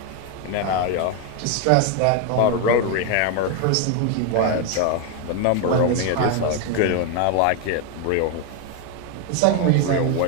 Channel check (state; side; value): different; both; correlation 0.01